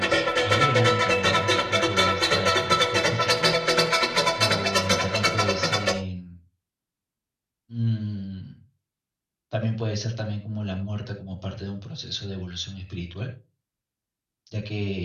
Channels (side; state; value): both; identical; correlation 1.00